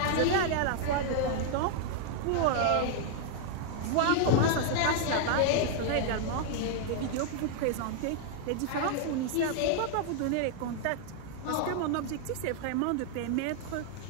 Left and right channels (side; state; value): both; different; correlation 0.00